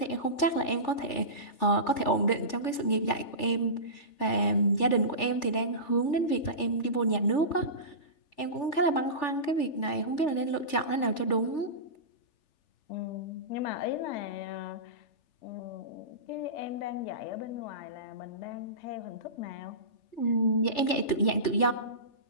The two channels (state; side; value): late; right; 3.4 ms